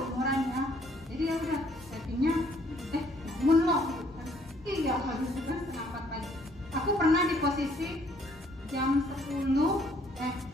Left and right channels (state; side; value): normal; both; correlation 0.64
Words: ya. Jadi ya udah chattingnya bangun loh gitu kan. Iya habis itu kan setengah 4 pagi. Aku pernah di posisi jam 10